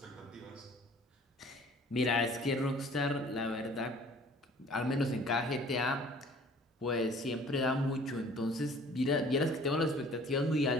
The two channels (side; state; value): both; normal; correlation 0.52